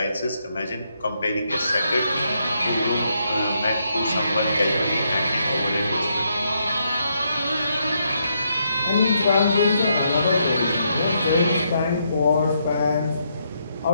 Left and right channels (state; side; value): inverted; both; correlation -0.78